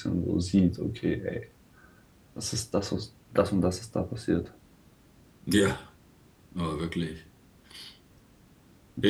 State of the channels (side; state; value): both; identical; correlation 1.00